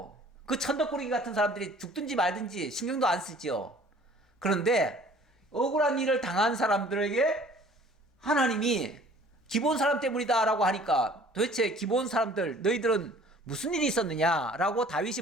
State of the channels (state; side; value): normal; both; correlation 0.52